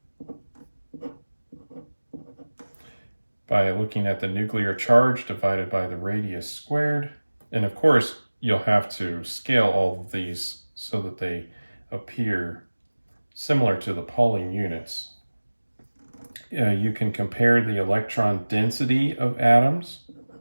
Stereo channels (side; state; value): both; inverted; correlation -1.00